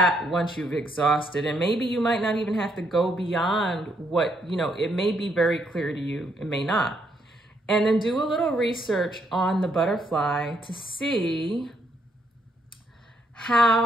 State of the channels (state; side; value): normal; both; correlation 0.73